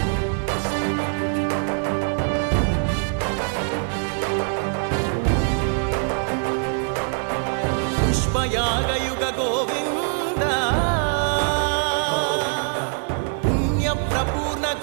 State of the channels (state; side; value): silent; left; 56 dB below the other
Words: పుష్పయాగయుగ గోవింద పుణ్యప్రపూర్ణ